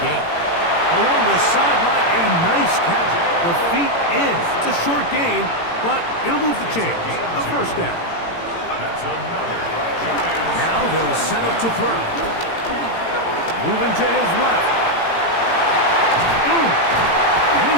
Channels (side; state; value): right; late; 18 ms